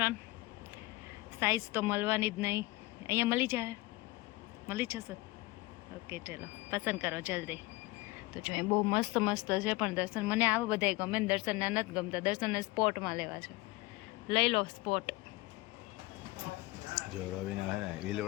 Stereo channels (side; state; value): right; quieter; 21.0 dB